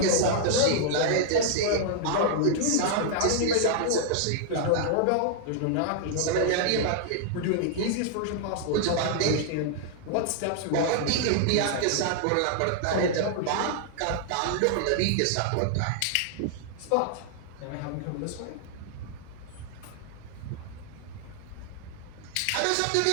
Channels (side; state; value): both; different; correlation -0.01